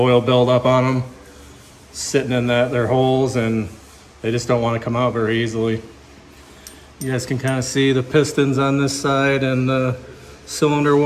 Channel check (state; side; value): identical; both; correlation 1.00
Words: buildup on them, sitting in their holes, and they just don't want to come out very easily. You guys can kind of see the pistons on this side and the cylinder